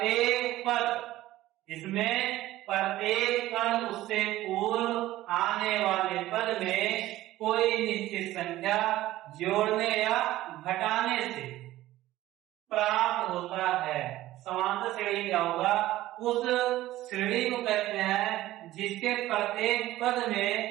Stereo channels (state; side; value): quieter; left; 15.6 dB